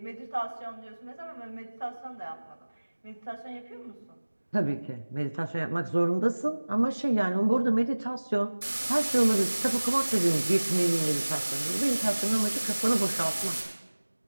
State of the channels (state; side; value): inverted; both; correlation -1.00